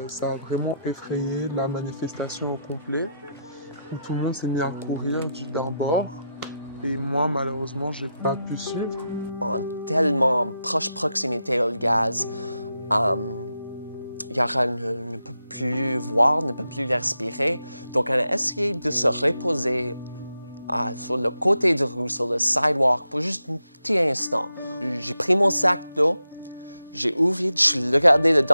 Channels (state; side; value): inverted; both; correlation -0.85